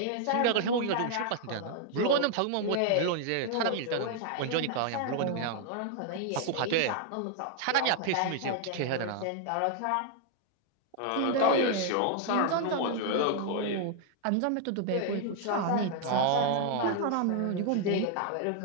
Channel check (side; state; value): both; different; correlation 0.00